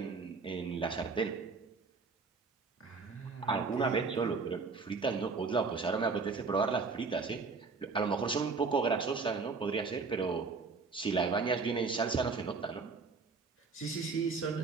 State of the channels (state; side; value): quieter; left; 4.5 dB